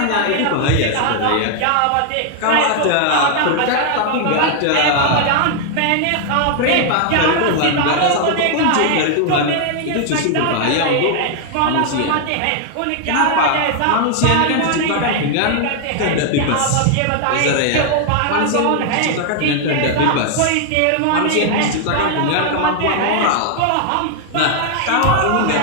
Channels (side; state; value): both; different; correlation 0.00